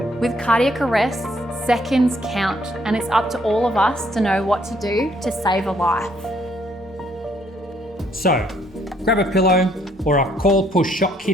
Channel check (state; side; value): normal; both; correlation 0.67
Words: With cardiac arrests, seconds count, and it's up to all of us to know what to do to save a life. So, grab a pillow or a call push shock